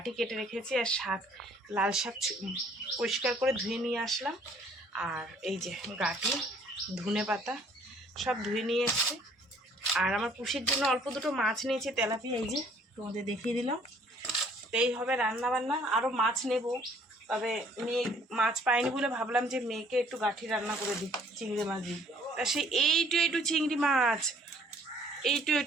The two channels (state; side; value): normal; both; correlation 0.59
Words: কেটে রেখেছি, আর শাক, লাল শাক পরিষ্কার করে ধুয়ে নিয়ে আসলাম। আর এই যে গাঁটি, ধনে পাতা সব ধুয়ে নিয়ে এসছি। আর আমার পুষির জন্য অল্প দুটো মাছ নিয়েছি, তেলাপিয়া, এই যে তোমাদের দেখিয়ে দিলাম। তো এই হবে রান্না বান্না। আরও মাছ নেব, তবে মেয়ে মাছ পাইনি বলে ভাবলাম যে মেয়েকে একটু গাঁঠি রান্না করে দিই চিংড়ি মাছ দিই। তা সে এইটু চিংড়ি মাছ,